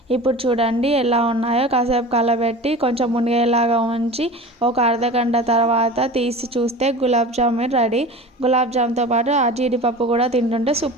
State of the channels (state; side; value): normal; both; correlation 0.35